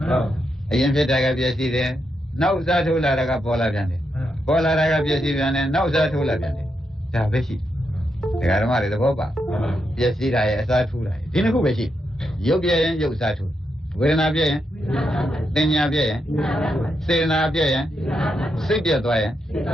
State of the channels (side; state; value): both; normal; correlation 0.83